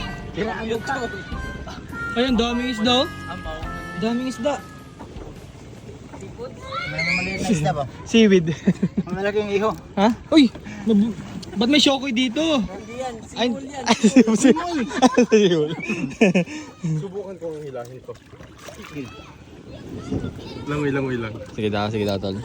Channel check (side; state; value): both; identical; correlation 1.00